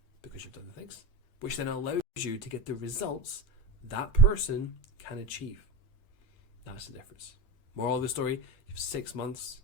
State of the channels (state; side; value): late; right; 8.8 ms